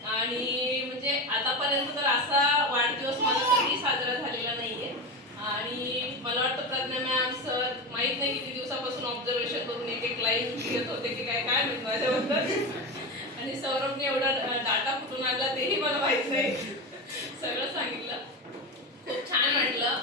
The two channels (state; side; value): normal; both; correlation 0.20